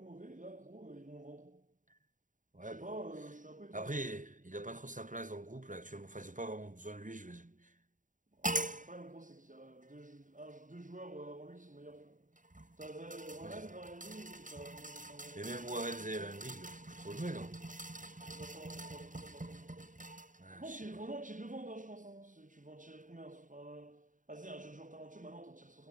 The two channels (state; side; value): late; left; 0.38 ms